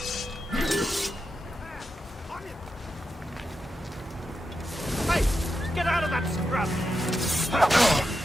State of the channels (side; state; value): both; normal; correlation 0.88